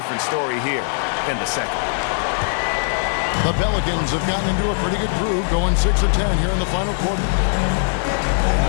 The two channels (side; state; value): right; silent; digital silence